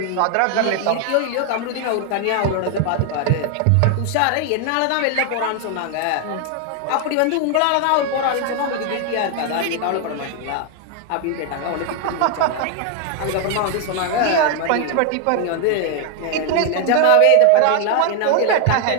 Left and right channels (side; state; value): both; different; correlation 0.00